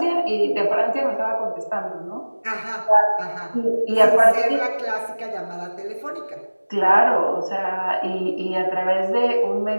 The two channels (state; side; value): inverted; both; correlation -1.00